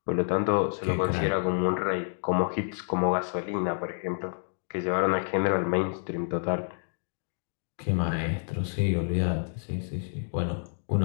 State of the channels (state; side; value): silent; right; digital silence